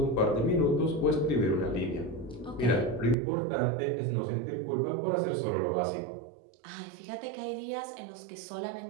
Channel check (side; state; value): left; drops out; at 3.2 s